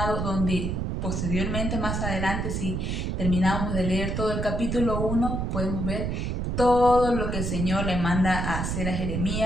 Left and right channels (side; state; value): right; noise; rumble, 1 dB below the sound